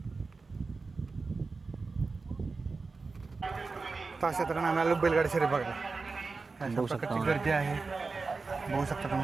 अशा तऱ्हेने आम्ही आलो बैलगाडी शर्यत बघायला. अशा प्रकारची गर्दी आहे, बघू शकता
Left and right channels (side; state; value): left; quieter; 4.1 dB